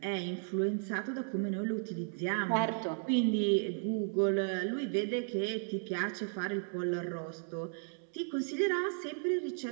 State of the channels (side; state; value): left; silent; 55 dB below the other